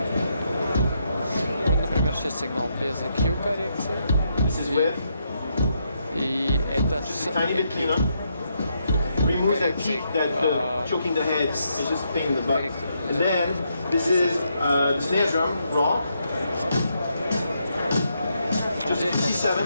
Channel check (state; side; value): inverted; both; correlation -0.79